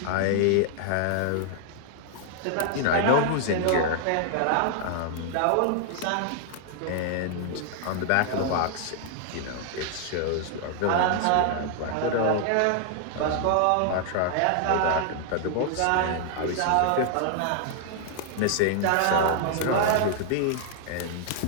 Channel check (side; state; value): both; different; correlation 0.00